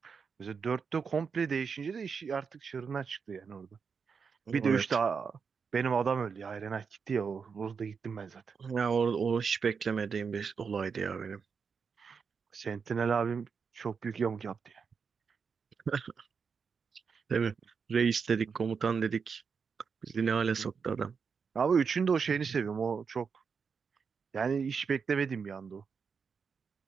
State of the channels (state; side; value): quieter; left; 5.8 dB